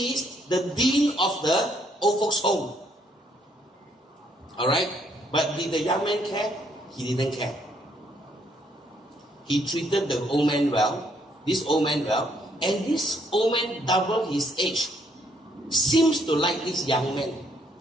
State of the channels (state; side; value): normal; both; correlation 0.70